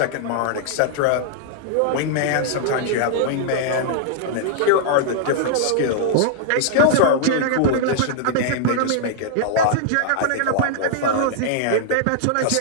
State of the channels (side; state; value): both; different; correlation -0.01